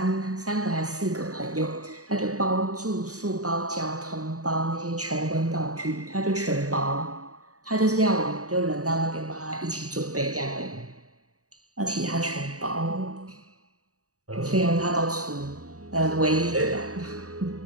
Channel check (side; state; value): left; late; 0.66 ms